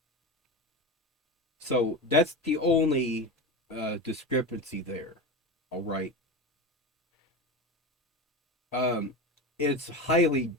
So that's the only discrepancy there. All right. It's highly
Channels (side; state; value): both; normal; correlation 0.24